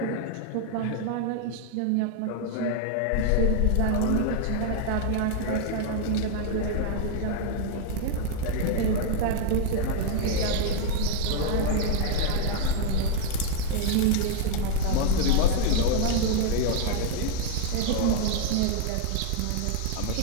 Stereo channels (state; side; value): different; both; correlation 0.00